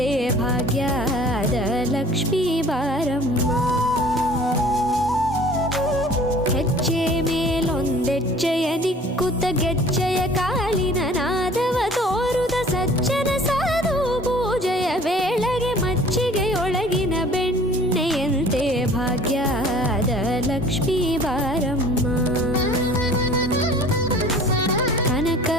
ಭಾಗ್ಯದ ಲಕ್ಷ್ಮೀ ಬಾರಮ್ಮ. ಹೆಜ್ಜೆ ಮೇಲೊಂದೆಜ್ಜೆಯ ನಿಕ್ಕುತ್ತ ಗೆಜ್ಜೆಯ ಕಾಲಿನ ನಾದವ ತೋರುದ ಸಜ್ಜನ ಸಾಧು ಪೂಜೆಯ ವೇಳೆಗೆ ಮಜ್ಜಿಗೆಯೊಳಗಿನ ಬೆಣ್ಣೆಯಂತೆ ಭಾಗ್ಯದ ಲಕ್ಷ್ಮೀ ಬಾರಮ್ಮ.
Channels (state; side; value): normal; both; correlation 0.48